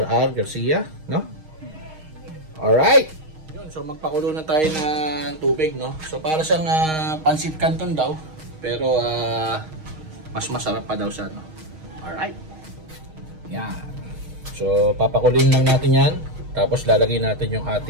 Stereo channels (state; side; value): late; left; 6.4 ms